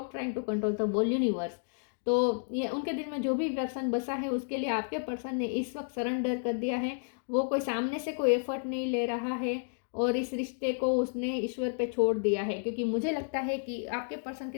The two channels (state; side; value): silent; right; digital silence